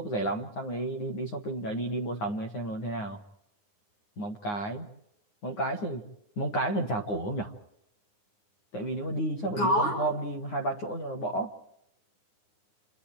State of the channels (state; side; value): late; right; 9.7 ms